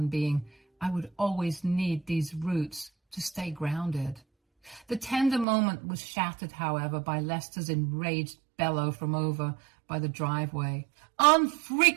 being, I would always need these roots to stay grounded. The tender moment was shattered, however, by Lester's enraged bellow from over by the driveway.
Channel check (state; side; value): drops out; left; at 5.5 s